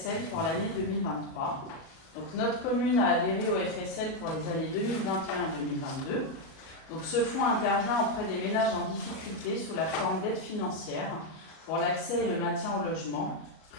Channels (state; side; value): late; right; 37 ms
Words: pour l'année 2023. Donc, notre commune a adhéré au FSL pour les années 2021 et 2022. Donc, ce fonds intervient auprès des ménages en difficulté sous la forme d'aide financière pour l'accès et le maintien au logement,